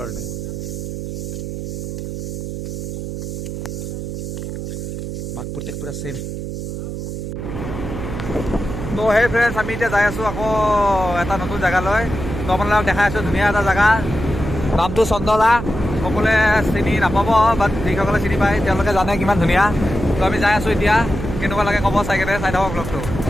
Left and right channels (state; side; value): noise; right; hum, 6 dB below the sound